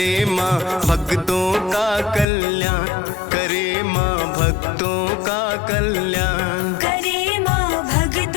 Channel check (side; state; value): right; drops out; at 2.2 s